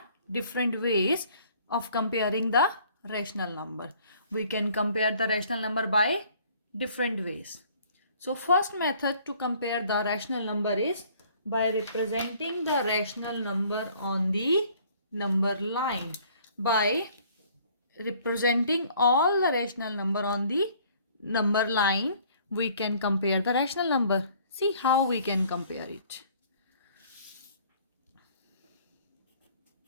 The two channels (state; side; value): inverted; both; correlation -0.57